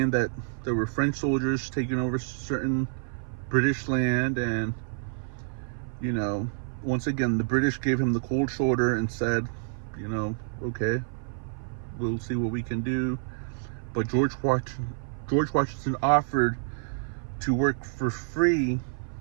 that there were French soldiers taking over certain British land, and once again the British gave him the cold shoulder and said, okay, we'll see what we can do. But George Washington offered to work for free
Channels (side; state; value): left; silent; 55 dB below the other